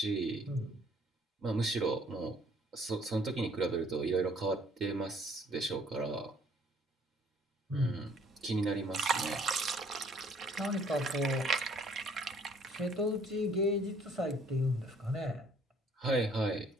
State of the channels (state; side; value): normal; both; correlation 0.60